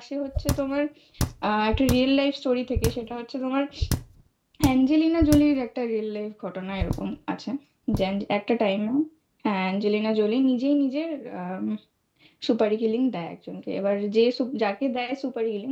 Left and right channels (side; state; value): both; identical; correlation 1.00